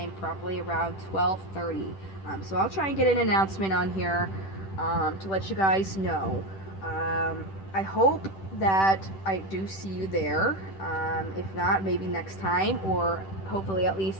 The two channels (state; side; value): late; right; 10 ms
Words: probably around 12:30. So I'll try and get an announcement on here to let you guys know. I hope that I do see you there. If not, maybe next time, or hopefully at